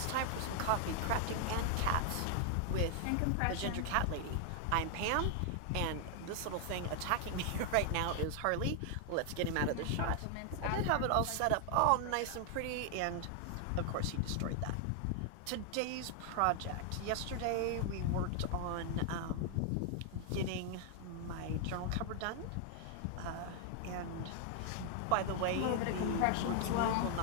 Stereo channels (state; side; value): different; both; correlation 0.00